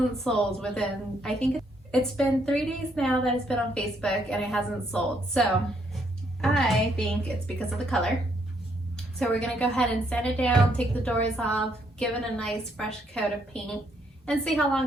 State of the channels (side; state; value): both; normal; correlation 0.72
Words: sold within, I think it's been 3 days now that it's been on Facebook and it hasn't sold. So I think it's because of the color. So we're gonna go ahead and sand it down, take the doors off, give it a nice fresh coat of paint, and see how